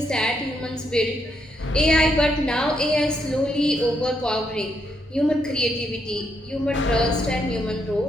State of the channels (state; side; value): normal; both; correlation 0.77